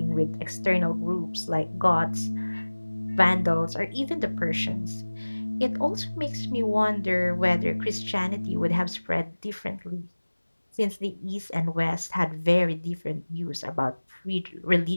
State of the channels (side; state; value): both; inverted; correlation -1.00